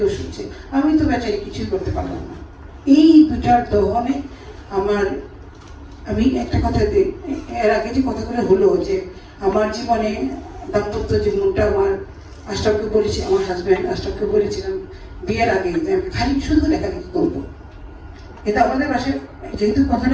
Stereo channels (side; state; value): both; identical; correlation 1.00